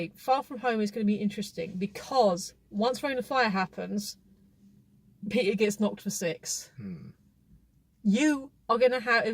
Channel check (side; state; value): both; identical; correlation 1.00